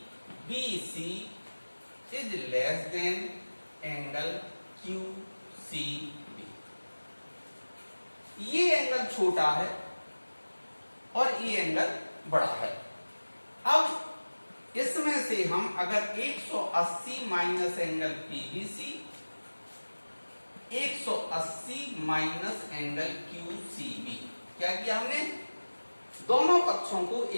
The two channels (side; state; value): both; inverted; correlation -1.00